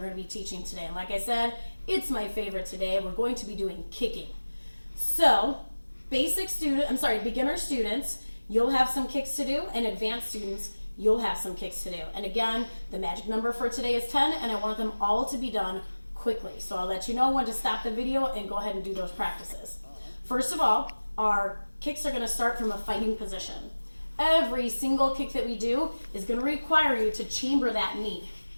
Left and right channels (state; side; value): inverted; both; correlation -1.00